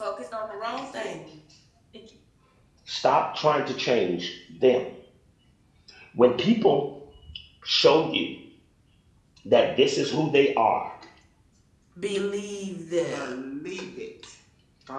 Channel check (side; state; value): both; identical; correlation 1.00